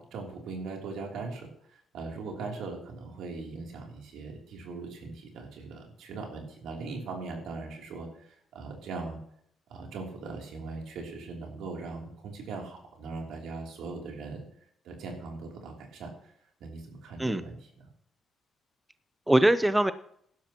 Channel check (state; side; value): normal; both; correlation 0.91